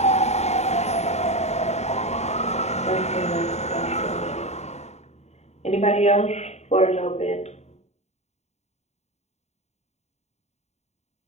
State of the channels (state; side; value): late; right; 0.32 ms